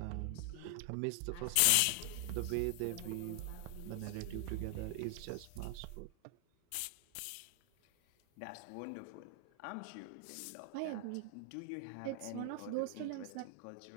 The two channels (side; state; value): both; different; correlation 0.00